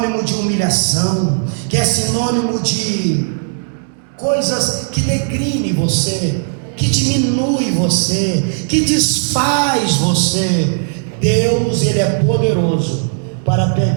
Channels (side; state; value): left; silent; digital silence